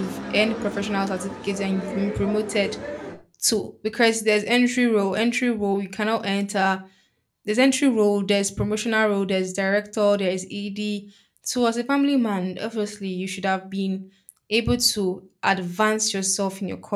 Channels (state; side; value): identical; both; correlation 1.00